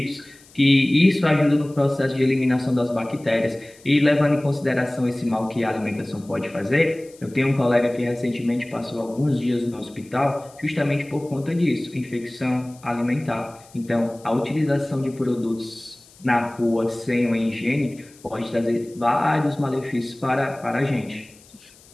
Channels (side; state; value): left; noise; hiss, 26 dB below the sound